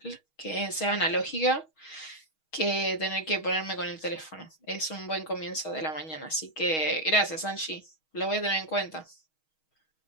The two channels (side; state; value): right; late; 6.3 ms